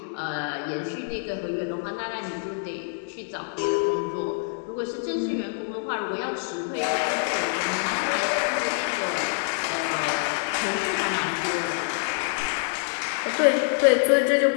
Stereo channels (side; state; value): right; silent; digital silence